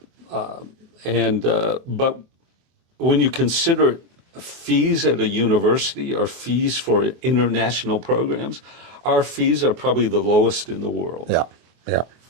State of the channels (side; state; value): left; late; 24 ms